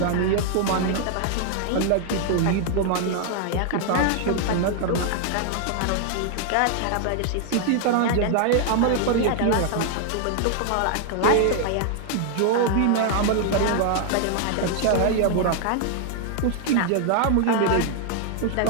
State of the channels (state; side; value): different; both; correlation 0.00